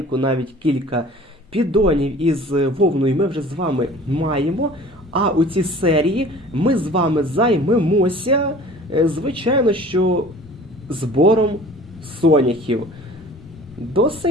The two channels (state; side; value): normal; both; correlation 0.46